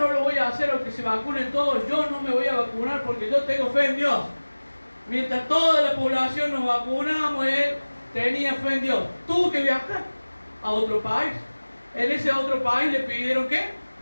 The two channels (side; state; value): both; inverted; correlation -1.00